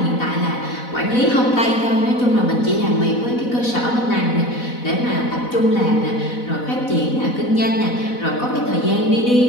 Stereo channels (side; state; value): right; late; 4.1 ms